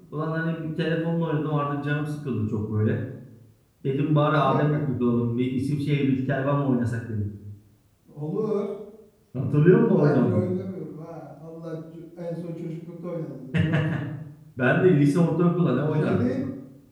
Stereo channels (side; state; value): both; identical; correlation 1.00